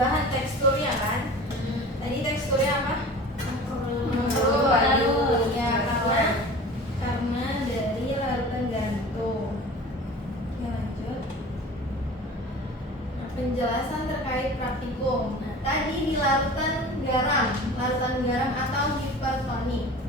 teksturnya kan. Tadi teksturnya apa? Layu. Ya, karena dari larutan garam itu. Oke, lanjut. Nah, penjelasan terkait praktikum. Nah, tadi di larutan garam atau hipertonik,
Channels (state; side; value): normal; both; correlation 0.39